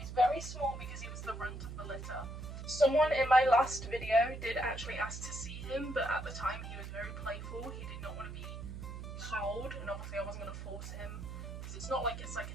very small because he was the runt of the litter. Someone in my last video did actually ask to see him, but at the time he was very playful. He did not want to be held, and obviously I wasn't going to force him, because it's not like it's like a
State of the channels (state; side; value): noise; right; hum, 8 dB below the sound